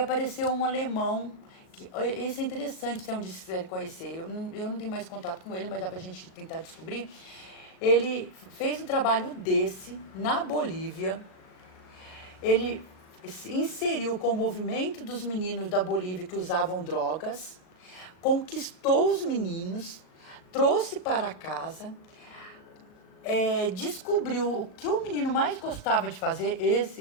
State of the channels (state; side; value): late; right; 38 ms